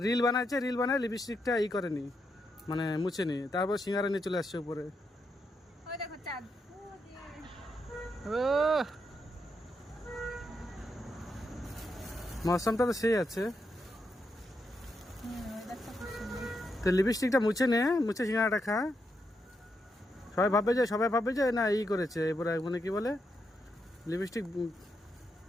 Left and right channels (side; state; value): both; normal; correlation 0.82